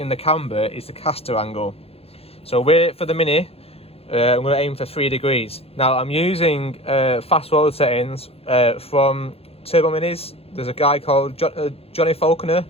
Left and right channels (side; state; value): right; late; 0.29 ms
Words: the camber is the caster angle. So for the Mini, I'm going to aim for 3 degrees. Now I'm using fast forward settings from Turbo Minis. There's a guy called Johnny Falconer